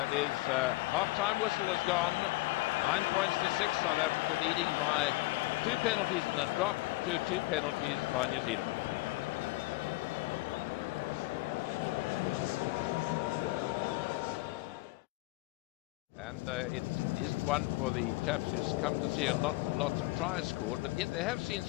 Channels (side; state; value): right; quieter; 21.0 dB